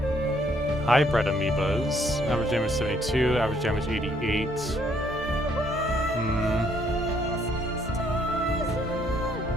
Hybrid amoebas. Average damage 72, average damage 88.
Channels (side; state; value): both; normal; correlation 0.67